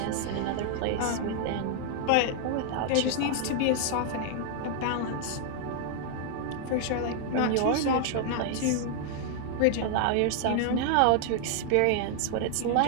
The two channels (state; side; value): different; both; correlation 0.00